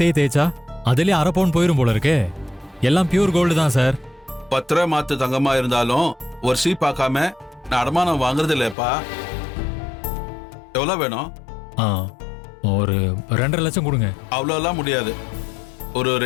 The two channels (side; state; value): right; drops out; at 8.8 s